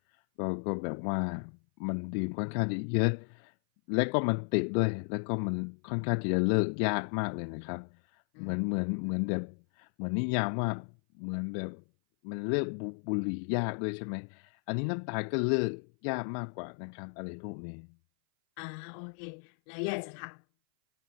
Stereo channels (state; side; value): silent; right; 56 dB below the other